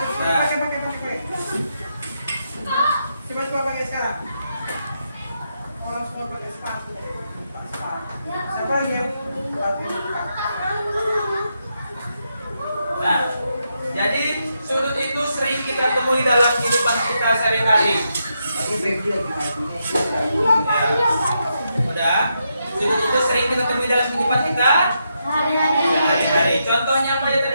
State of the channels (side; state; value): both; inverted; correlation -0.82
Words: Pakai. Coba pakai sekarang. Orang semua pakai sepatu. Siapa lagi yang pakai? Nah, jadi sudut itu sering kita temui dalam kehidupan kita sehari-hari. Udah? Sudut itu sering kita temui dalam kehidupan kita sehari-hari. Contohnya apa yang